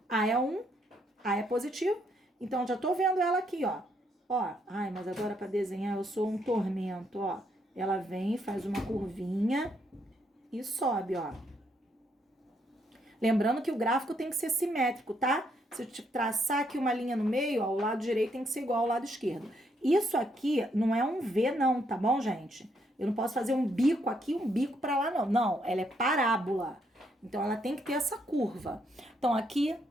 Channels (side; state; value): both; normal; correlation 0.74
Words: A é 1, A é positivo. Então, já tô vendo ela aqui, ó. Ó, ai, mas agora pra desenhar eu sou um tormento, ó. Ela vem, faz uma curvinha e sobe, ó. Lembrando que o gráfico tem que ser simétrico, tá? Se eu te traçar aqui uma linha no meio, ó, o lado direito tem que ser igual ao lado esquerdo. Isso aqui não é um V, não, tá bom, gente? Eu não posso fazer um bico aqui, um bico pra lá, não. Não, ela é parábola. Então, ela tem que ter essa curva. Então, aqui